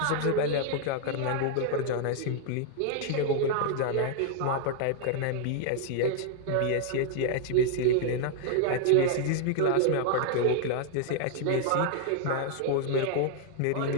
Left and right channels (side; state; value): both; different; correlation 0.00